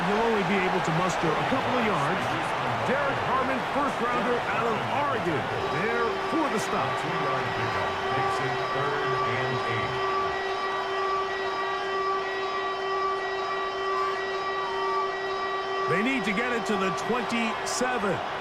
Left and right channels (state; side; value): identical; both; correlation 1.00